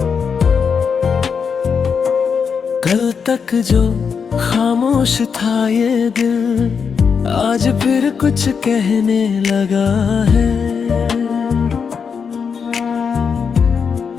कल तक जो खामोश था ये दिल, आज फिर कुछ कहने लगा है।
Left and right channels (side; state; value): right; quieter; 6.2 dB